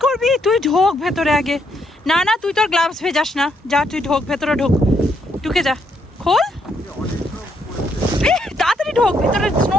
করবি? তুই ঢোক ভেতরে আগে। না না, তুই তোর গ্লাভস ভেজাস না, যা তুই ঢোক ভেতরে, ঢোক, ঢুকে যা, খোল তাড়াতাড়ি ঢোক ভেতরে, স্নো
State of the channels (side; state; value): both; normal; correlation 0.75